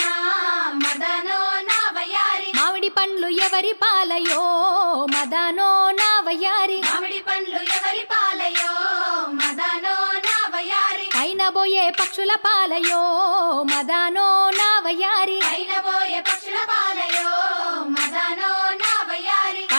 మదనో నా వయ్యారి మామిడి పండ్లు ఎవరి పాలయో మదానో నా వయ్యారి మామిడి పండ్లు ఎవరి పాలయో మదనో నా వయ్యారి పైన బోయే పక్షుల పాలయో మదానో నా వయ్యారి పైన పోయే పక్షుల పాలయో మదనో నా వయ్యారి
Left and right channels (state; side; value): inverted; both; correlation -1.00